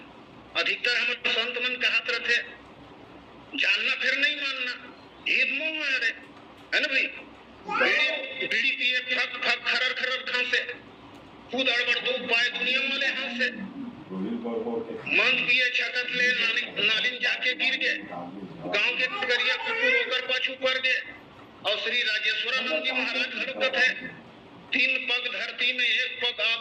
अधिकतर हमारे संत मन कहत रहते जानना फिर नहीं मानना ये तो मोह है ना भाई। बीड़ी पिए फक फक खरर खरर खांसे खुद अड़बड़ दो पाए दुनिया वाले हाथ से मंद पिए छकत ले नालिन जाके गिर गए गांव के करिया कुकुर होकर पाछू पड़ गए। और श्री राजेश्वरानंद जी महाराज हरकत है 3 पग धरती में 1 पग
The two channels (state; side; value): identical; both; correlation 1.00